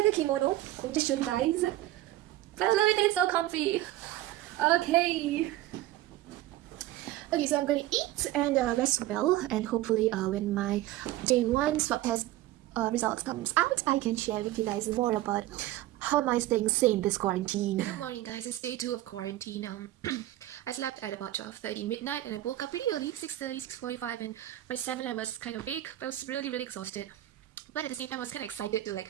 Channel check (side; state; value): left; quieter; 15.2 dB